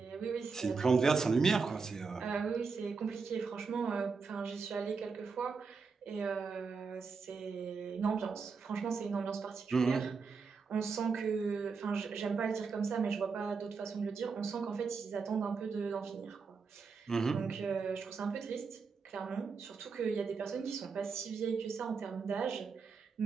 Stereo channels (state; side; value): quieter; left; 5.0 dB